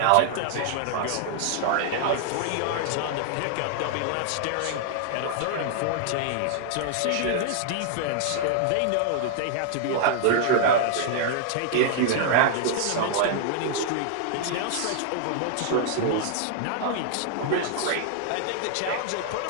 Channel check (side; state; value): both; different; correlation -0.01